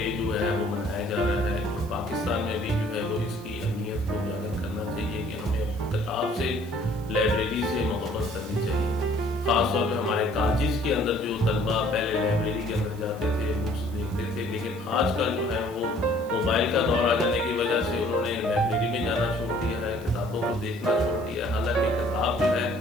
جو ہے وہ منایا جا رہا ہے، اور پاکستان میں بھی جو ہے وہ اس کی اہمیت کو اجاگر کرنا چاہیے کہ ہمیں کتاب سے، لائبریری سے محبت کرنی چاہیے۔ خاص طور پہ ہمارے کالجز کے اندر جو طلبہ پہلے لائبریری کے اندر جاتے تھے، بکس دیکھتے تھے، لیکن آج کل جو ہے وہ موبائل کا دور آ جانے کی وجہ سے انہوں نے لائبریری میں جانا چھوڑ دیا ہے، کتابوں کو دیکھنا چھوڑ دیا ہے۔ حالانکہ کتاب جو ہے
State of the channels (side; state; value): right; noise; hiss, 23 dB below the sound